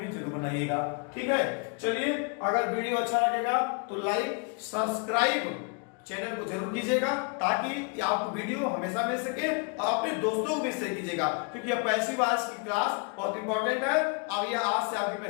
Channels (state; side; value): quieter; right; 34.2 dB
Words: जरूर बनाइएगा, ठीक है। चलिए, अगर वीडियो अच्छा लगेगा तो लाइक सब्सक्राइब चैनल को जरूर कीजिएगा, ताकि आपको वीडियो हमेशा मिल सके, और अपने दोस्तों को भी शेयर कीजिएगा, क्योंकि यह पैसिव वॉइस की क्लास बहुत इंपॉर्टेंट है। अब यह आज से आपकी